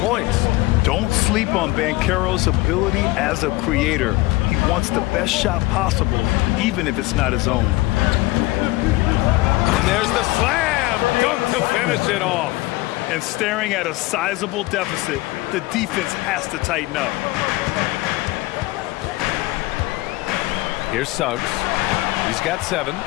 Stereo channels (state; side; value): quieter; right; 20.0 dB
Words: Don't sleep on Banchero's ability as a creator. He wants the best shot possible, even if it's not his own. And there's the slam dunk to finish it off. And staring at a sizable deficit, the defense has to tighten up. Here's Suggs. He's got 7.